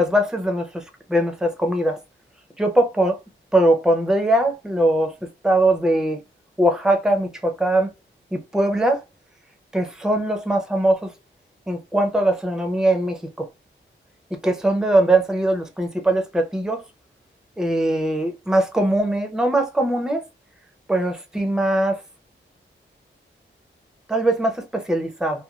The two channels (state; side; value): normal; both; correlation 0.80